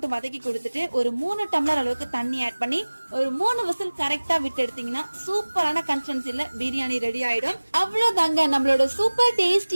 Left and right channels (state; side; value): inverted; both; correlation -1.00